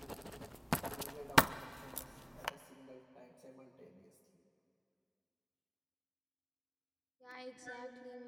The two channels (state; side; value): identical; both; correlation 1.00